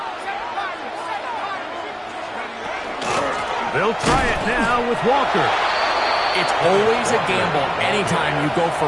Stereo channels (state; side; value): identical; both; correlation 1.00